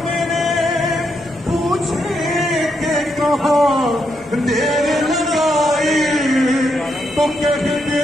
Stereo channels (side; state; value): both; normal; correlation 0.79